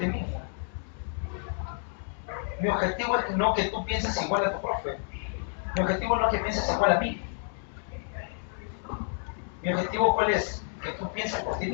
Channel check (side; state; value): right; silent; 56 dB below the other